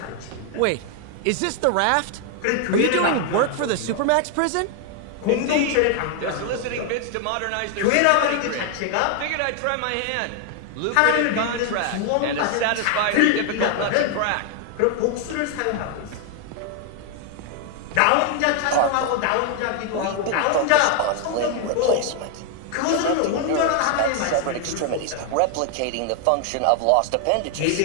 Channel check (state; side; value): different; both; correlation 0.00